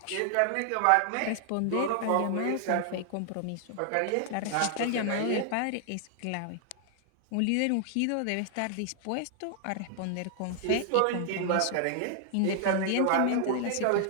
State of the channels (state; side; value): different; both; correlation 0.00